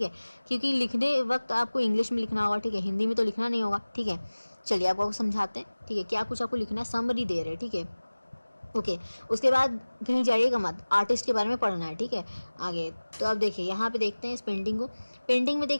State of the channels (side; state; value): both; inverted; correlation -1.00